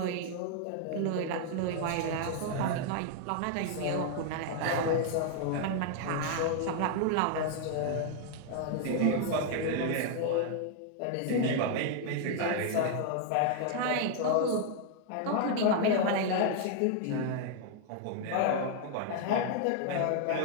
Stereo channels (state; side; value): different; both; correlation 0.00